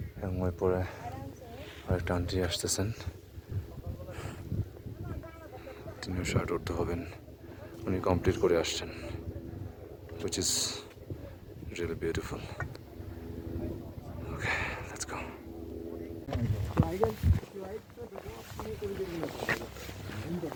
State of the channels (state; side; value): identical; both; correlation 1.00